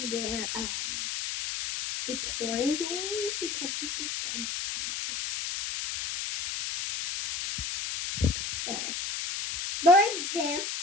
we're detorivores? Because we eat dead cows. Whatever. For example,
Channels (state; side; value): noise; left; hiss, 3 dB below the sound